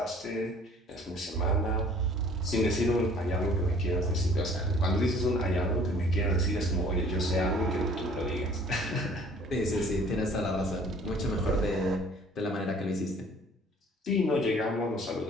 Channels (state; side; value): normal; both; correlation 0.53